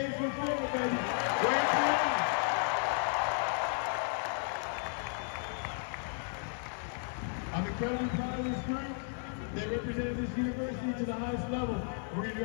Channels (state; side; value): silent; right; 55 dB below the other